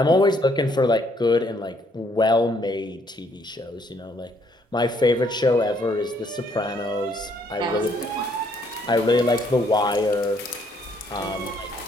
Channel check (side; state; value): both; normal; correlation 0.67